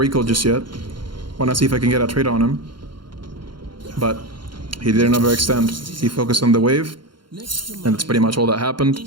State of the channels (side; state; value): left; late; 0.72 ms